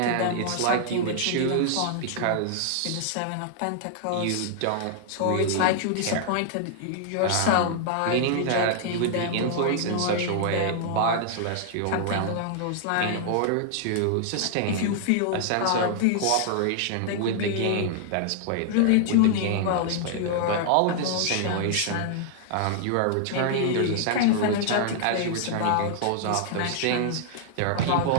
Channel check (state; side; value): different; both; correlation -0.01